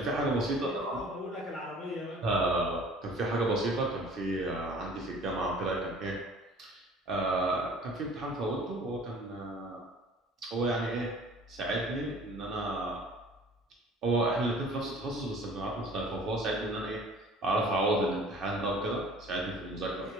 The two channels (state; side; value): normal; both; correlation 0.48